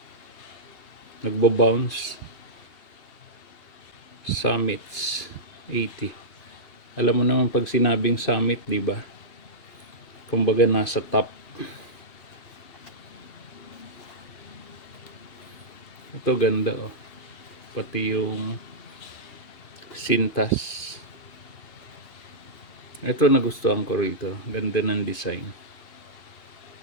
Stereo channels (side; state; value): right; late; 2.5 ms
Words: nagbo-bounce. Summits 80. Alam mo naman pag sinabing summit, di ba? Kumbaga nasa top. Ito ganda, oh. Pati yung sintas. Ito nagustuhan ko rito. Ganda ng design.